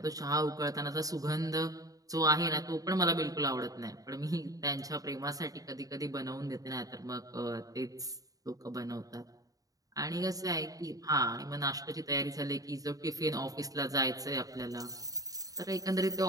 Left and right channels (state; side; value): late; left; 0.17 ms